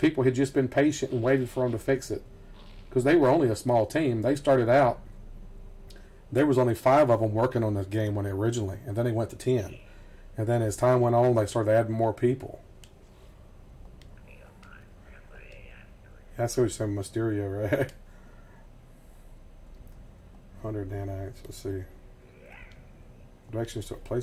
had just been patient and waited for them to fix it. Because they were only a small team. They started out, there was only 5 of them working on this game when originally. And then they went to 10. And then as time went on, they started adding more people. That's what you said, Mysterio, right? 100 nanites. Let's see. Directions to a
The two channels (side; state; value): both; identical; correlation 1.00